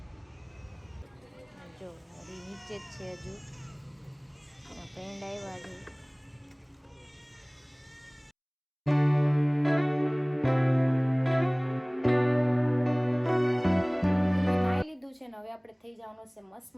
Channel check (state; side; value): identical; both; correlation 1.00